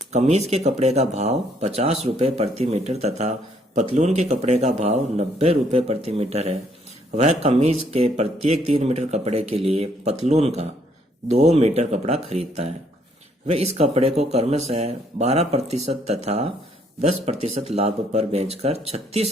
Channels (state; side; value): normal; both; correlation 0.68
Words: कमीज के कपड़े का भाव 50 रुपये प्रति मीटर तथा पतलून के कपड़े का भाव 90 रुपये प्रति मीटर है। वह कमीज के प्रत्येक 3 मीटर कपड़े के लिए पतलून का 2 मीटर कपड़ा खरीदता है। वह इस कपड़े को क्रमशः 12% तथा 10% लाभ पर बेचकर